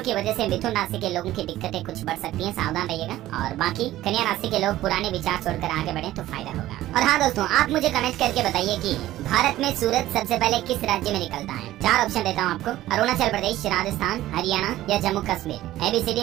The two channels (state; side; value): quieter; left; 14.9 dB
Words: की वजह से मिथुन राशि के लोगों की दिक्कतें कुछ बढ़ सकती हैं, सावधान रहिएगा। और बाकी कन्या राशि के लोग पुराने विचार छोड़कर आगे बढ़े तो फायदा होगा। और हाँ दोस्तों, आप मुझे कमेंट करके बताइए कि भारत में सूरज सबसे पहले किस राज्य में निकलता है। 4 ऑप्शन देता हूँ आपको, अरुणाचल प्रदेश, राजस्थान, हरियाणा या Jammu Kashmir.